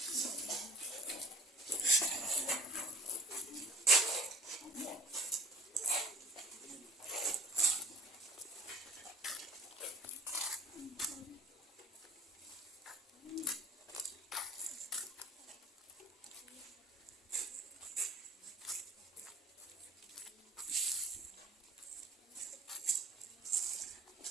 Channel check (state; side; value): normal; both; correlation 0.45